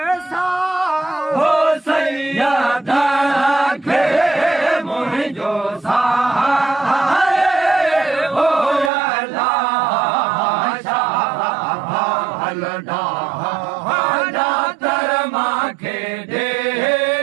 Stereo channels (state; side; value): drops out; left; at 8.9 s